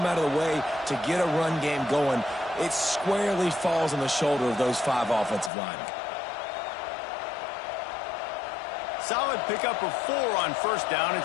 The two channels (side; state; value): right; drops out; at 5.5 s